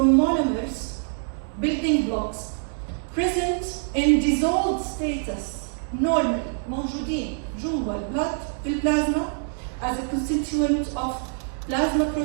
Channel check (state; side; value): silent; left; digital silence